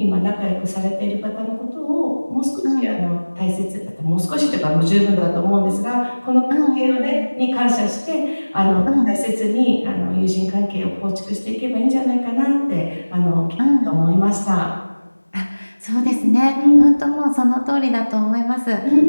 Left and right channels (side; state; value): both; inverted; correlation -1.00